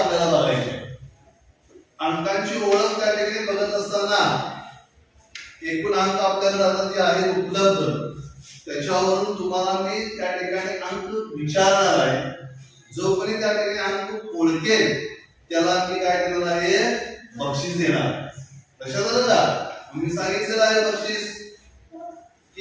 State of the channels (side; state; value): both; identical; correlation 1.00